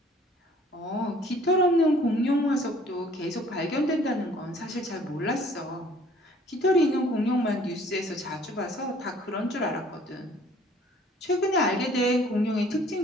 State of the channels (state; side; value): normal; both; correlation 0.56